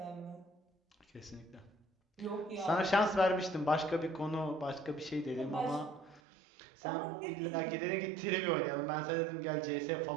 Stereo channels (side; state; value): left; drops out; at 6.2 s